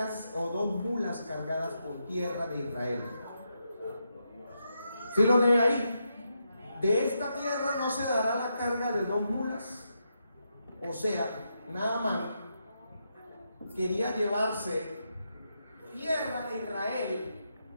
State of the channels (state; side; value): inverted; both; correlation -0.83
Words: o 2 mulas cargadas con tierra de Israel. ¿Sí lo lee ahí? De esta tierra no se dará la carga de 2 mulas. O sea, Naamán quería llevarse tierra de Israel.